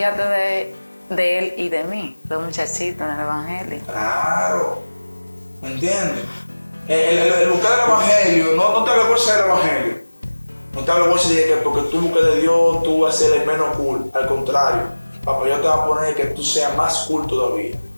de él y de mí, los muchachitos en el Evangelio. Claro. ¿Me entiendes? El buscar el Evangelio, no te avergüences del Evangelio. No te avergüences de que porque tú buscas de Dios, tú vas a ser el menos cool. Al contrario, papá, yo te voy a poner que tú seas más cool todavía.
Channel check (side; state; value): both; inverted; correlation -1.00